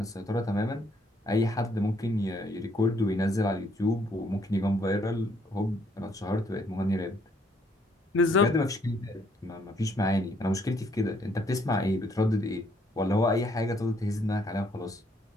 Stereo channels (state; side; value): normal; both; correlation 0.68